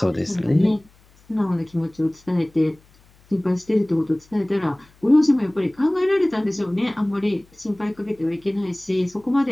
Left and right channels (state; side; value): noise; left; hum, 30 dB below the sound